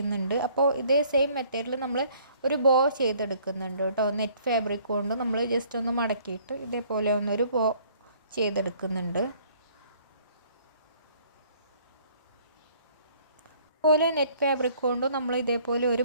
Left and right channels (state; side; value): inverted; both; correlation -0.59